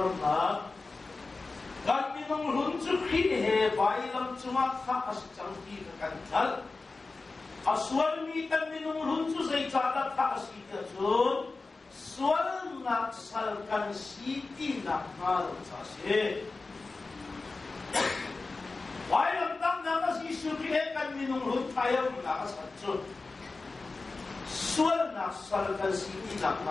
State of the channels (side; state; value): right; quieter; 3.7 dB